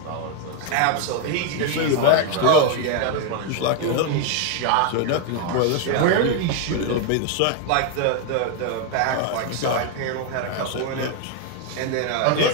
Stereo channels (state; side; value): different; both; correlation 0.00